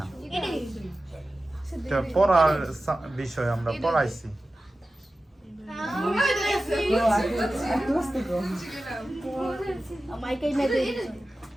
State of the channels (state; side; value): normal; both; correlation 0.94